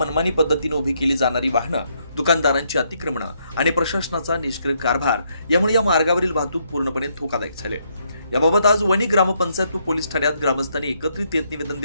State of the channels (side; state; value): both; inverted; correlation -0.74